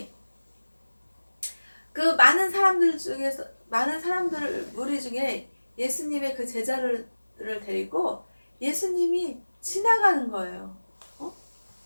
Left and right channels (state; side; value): inverted; both; correlation -1.00